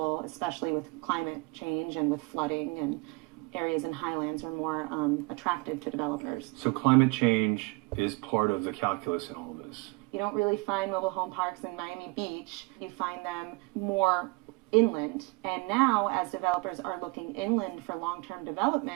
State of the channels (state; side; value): quieter; left; 26.9 dB